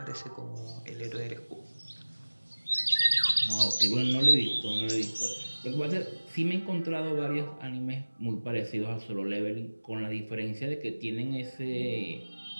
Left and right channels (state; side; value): inverted; both; correlation -1.00